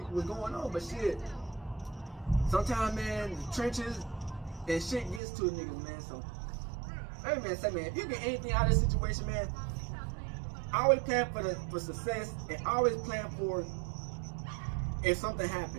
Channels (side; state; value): left; drops out; at 5.2 s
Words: on. But shit, sometimes, man, the trenches and shit gets to a niggas, man. So, hey man, say man, if you get anything out of this situation, man, always plan for success and always plan for if something